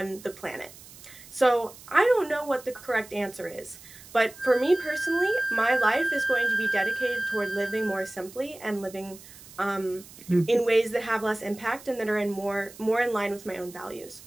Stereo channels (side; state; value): right; noise; hiss, 19 dB below the sound